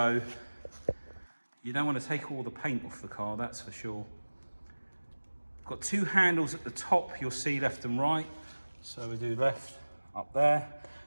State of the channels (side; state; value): both; inverted; correlation -1.00